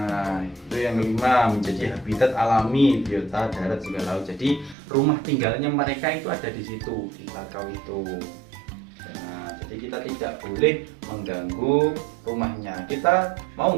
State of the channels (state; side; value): drops out; left; at 4.8 s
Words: itu yang kelima, menjadi habitat alami biota darat juga laut. Jadi rumah tinggalnya mereka itu ada di situ, di bakau itu. Nah, jadi kita tidak boleh mengganggu rumahnya. Kita mau